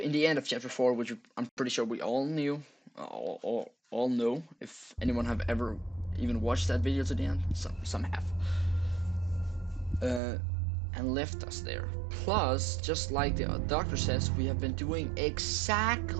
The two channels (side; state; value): left; drops out; at 10.2 s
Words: the end of Chapter 4, which I'm pretty sure we all knew, all know. If anyone have ever even watched that video to the end, some have. And left us there. Plus, just like the doctor says, we have been doing